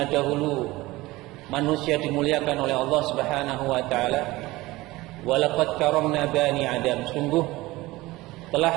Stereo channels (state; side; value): quieter; left; 19.6 dB